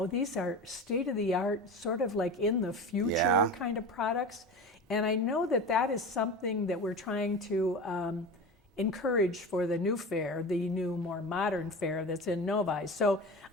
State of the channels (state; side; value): normal; both; correlation 0.30